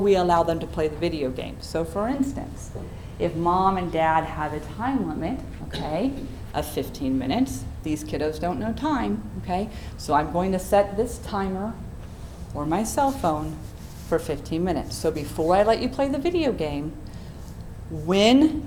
allow them to play the video game? So for instance, if Mom and Dad have a time limit, okay, of 15 minutes. These kiddos don't know time, okay? So I'm going to set this timer or my cell phone for 15 minutes. So before I let you play the video game, when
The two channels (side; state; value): both; identical; correlation 1.00